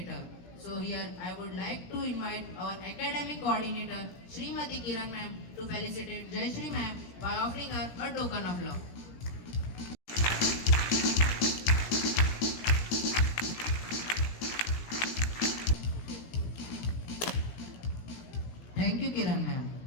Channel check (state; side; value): late; right; 17 ms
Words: her. So here I would like to invite our academic coordinator Srimati Kiran ma'am to felicitate Jayashree ma'am by offering her a token of love. Thank you Kiran ma'am.